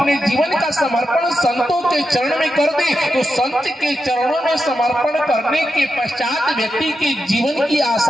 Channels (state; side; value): normal; both; correlation 0.87